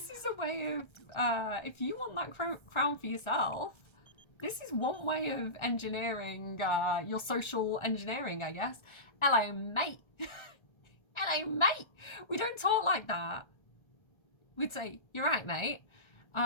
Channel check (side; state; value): right; late; 1.3 ms